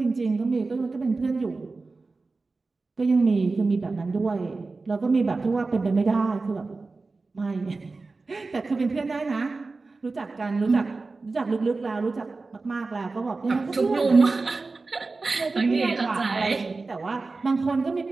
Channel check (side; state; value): left; quieter; 3.8 dB